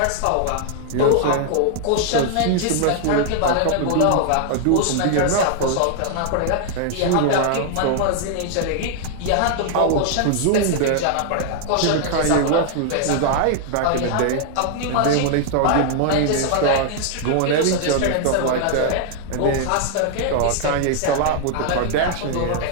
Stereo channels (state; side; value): different; both; correlation 0.00